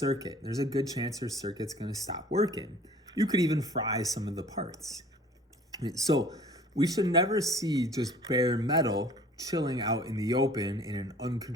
There's a good chance your circuit's going to stop working. You could even fry some of the parts. So we should never see just bare metal chilling out in the open in an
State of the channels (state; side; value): normal; both; correlation 0.50